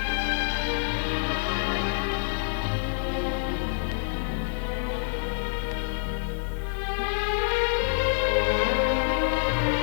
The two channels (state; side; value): silent; right; digital silence